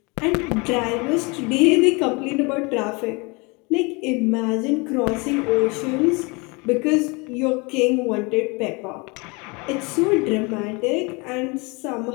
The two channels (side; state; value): right; quieter; 28.2 dB